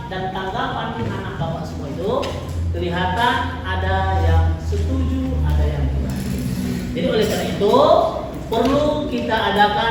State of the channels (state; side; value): identical; both; correlation 1.00